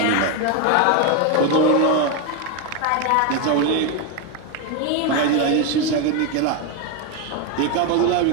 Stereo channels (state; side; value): different; both; correlation 0.02